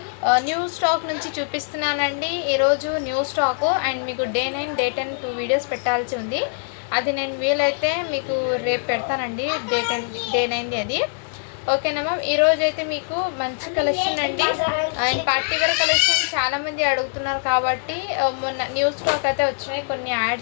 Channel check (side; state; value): right; silent; digital silence